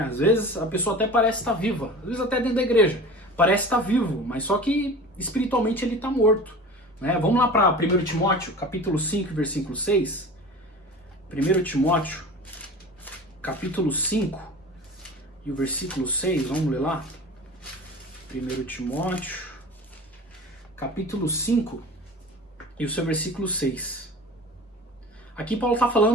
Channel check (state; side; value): normal; both; correlation 0.37